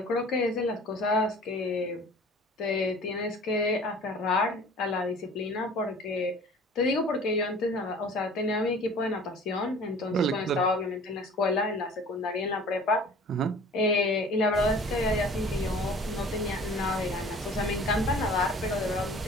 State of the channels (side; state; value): both; normal; correlation 0.46